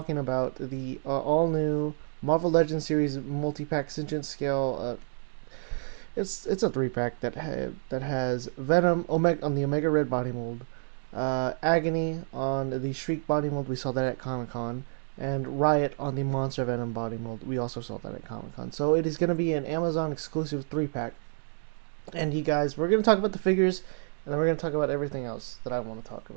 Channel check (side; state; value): left; silent; digital silence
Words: all new Marvel Legends series multi-pack Sentient scale. It's a 3-pack that has Venom Omega on the Omega Red body mold, Agony on the Shriek body mold. We saw that at Comic Con, and Riot on the Monster Venom body mold. We also saw that at Comic Con. So it is going to be an Amazon exclusive 3-pack. And you guys, we're going to talk about the figures, and then we're going to talk about everything else that I want to talk